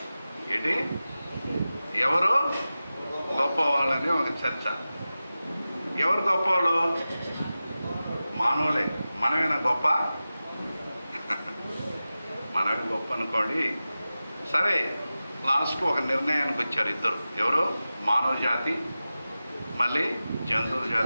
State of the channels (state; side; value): inverted; both; correlation -0.95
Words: ఏంటి? ఎవరు గొప్పవాళ్ళని ఒక చర్చ. ఎవరు గొప్పవాళ్ళు? మానవులే. మనమేనా గొప్ప? మనమే గొప్ప అనుకోండి. సరే, లాస్ట్కు ఒక నిర్ణయానికి వచ్చారు ఇద్దరు. ఎవరు? మానవ జాతి, మళ్ళీ జంతువుల